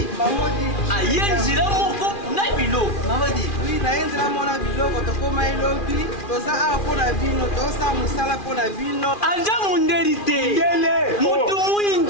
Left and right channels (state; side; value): late; right; 2.4 ms